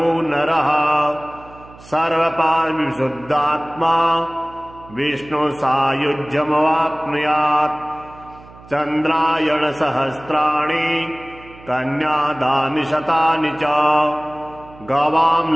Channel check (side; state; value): right; noise; hum, 21 dB below the sound